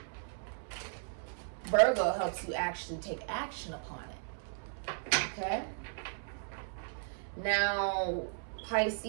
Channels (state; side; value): silent; left; 54 dB below the other